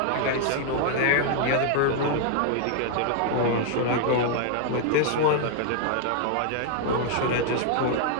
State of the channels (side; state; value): both; different; correlation 0.00